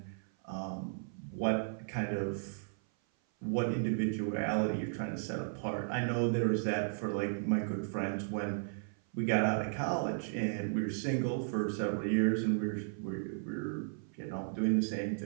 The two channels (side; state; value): left; silent; 54 dB below the other